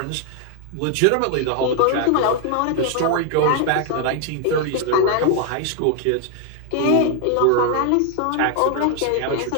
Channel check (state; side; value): different; both; correlation 0.00